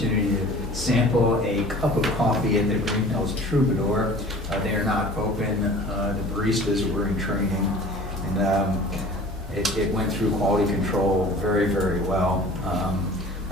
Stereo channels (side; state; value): both; normal; correlation 0.44